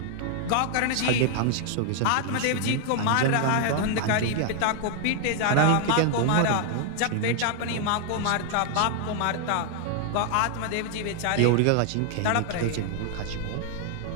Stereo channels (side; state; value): both; different; correlation 0.00